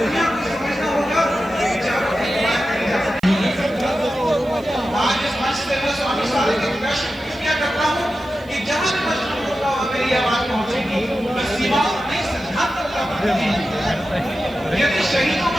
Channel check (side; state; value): right; noise; hiss, 27 dB below the sound